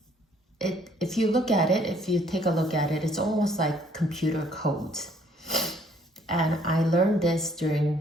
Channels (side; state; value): both; normal; correlation 0.63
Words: if you take a look at it, it's almost like computer codes. And I learned this during